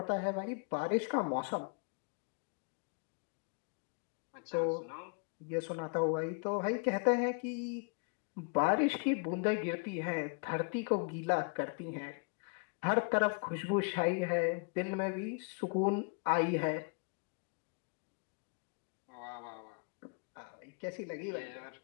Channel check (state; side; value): quieter; right; 36.5 dB